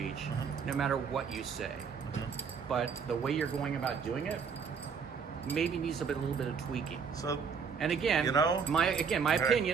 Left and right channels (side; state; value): left; quieter; 6.1 dB